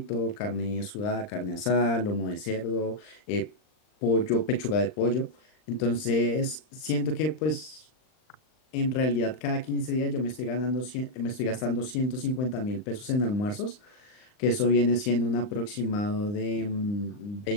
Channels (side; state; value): right; late; 39 ms